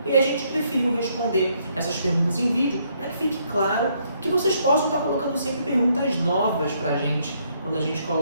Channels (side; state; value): both; inverted; correlation -0.71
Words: E a gente preferiu responder essas perguntas em vídeo para que fique claro que vocês possam estar colocando sempre perguntas novas para a gente quando a gente